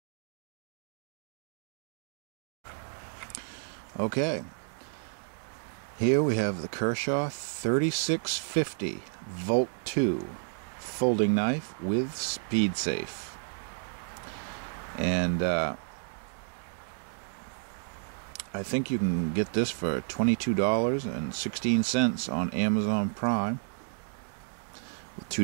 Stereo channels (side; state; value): left; silent; digital silence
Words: Okay, here we have the Kershaw 3650 Volt 2 folding knife with SpeedSafe. And I think you can get this for $22.16 on Amazon Prime with